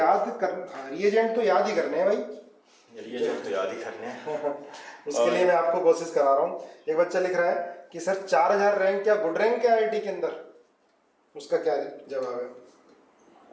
कर, रिएजेंट तो याद ही करने हैं भाई, रिएजेंट तो याद ही करने हैं। उसके लिए मैं आपको कोशिश करा रहा हूँ। एक बच्चा लिख रहा है कि सर 4000 रैंक क्या गुड रैंक है आईआईटी के अंदर? उसका क्या जवाब है?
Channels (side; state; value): both; identical; correlation 1.00